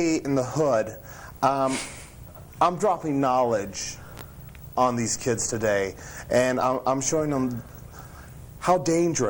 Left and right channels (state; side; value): identical; both; correlation 1.00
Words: in the hood, I'm dropping knowledge on these kids today, and I'm showing them how